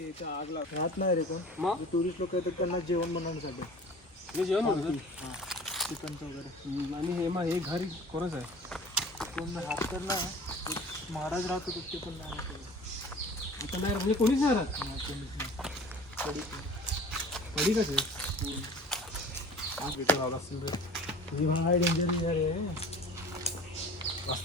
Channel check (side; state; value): both; normal; correlation 0.43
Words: इथं आग लावतात. राहत नाही रे कोण. मग टुरिस्ट लोक येतात त्यांना जेवण बनवण्यासाठी. मी जेवण म्हणतो. हां, चिकनचं वगैरे. आणि हे मग हे घर कोणाचं आहे? कोण राहत तर नाही. एक महाराज राहत होते ते पण नाही केलं. इथं नाही म्हणजे कोणीच नाही राहत. हां, कोणीच नाही. कधी कसं आहे? आग इथं लावला असेल रे. ही भाई डेंजर आहे.